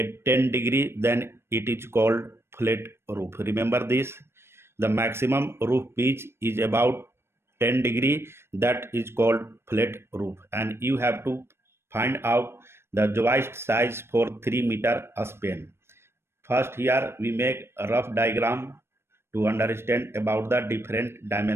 10 degree, then it is called flat roof. Remember this, the maximum roof pitch is about 10 degree, that is called flat roof. And you have to find out the joist size for 3-meter span. First, here we make a rough diagram to understand about the different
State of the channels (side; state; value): left; late; 0.12 ms